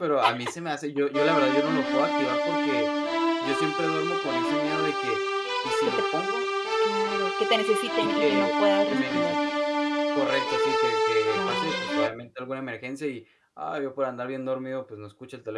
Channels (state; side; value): identical; both; correlation 1.00